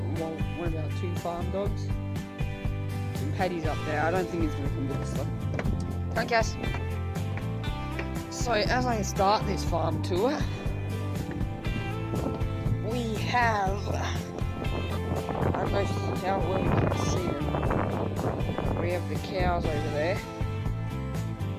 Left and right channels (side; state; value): both; identical; correlation 1.00